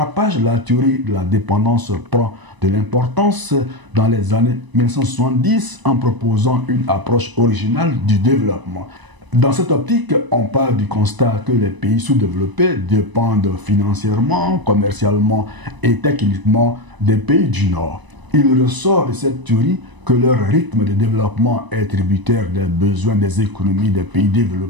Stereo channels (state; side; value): late; left; 1.0 ms